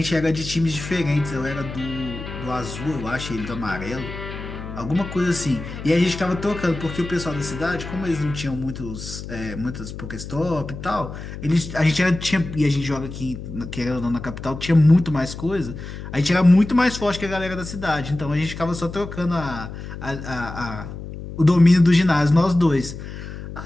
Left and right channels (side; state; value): left; noise; hum, 10 dB below the sound